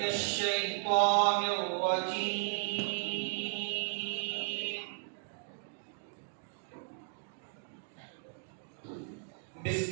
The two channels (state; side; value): silent; left; digital silence